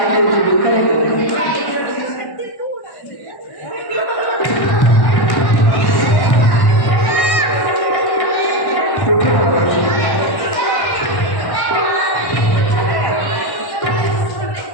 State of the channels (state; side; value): late; right; 1.1 ms